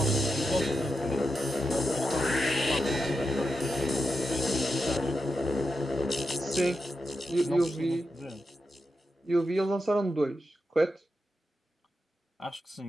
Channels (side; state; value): both; normal; correlation 0.88